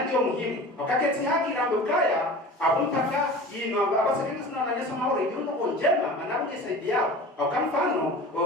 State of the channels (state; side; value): normal; both; correlation 0.37